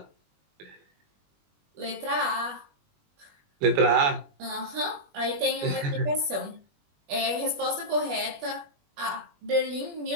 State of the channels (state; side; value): late; left; 21 ms